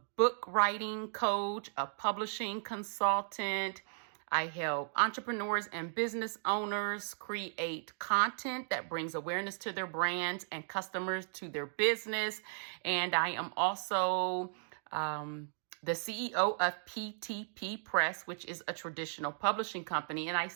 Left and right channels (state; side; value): silent; left; digital silence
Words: book writing coach, a publishing consultant. I help entrepreneurs and business owners create content that brings awareness to their brands and customers to their business. And I am also the CEO of PTP Press, which is a traditional publishing company. And I